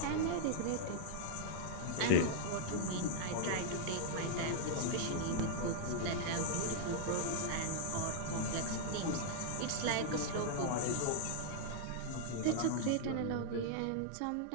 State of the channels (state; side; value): different; both; correlation -0.01